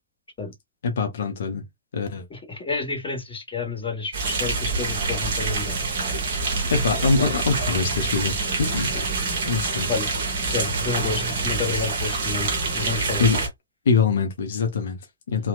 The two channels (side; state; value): both; inverted; correlation -0.40